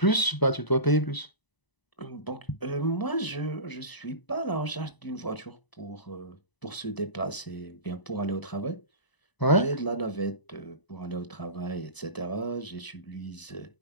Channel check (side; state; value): right; late; 1.0 ms